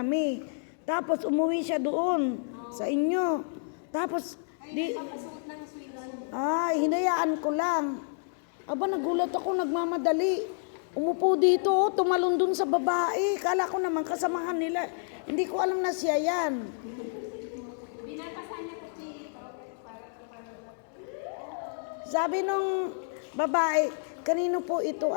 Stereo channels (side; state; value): right; silent; digital silence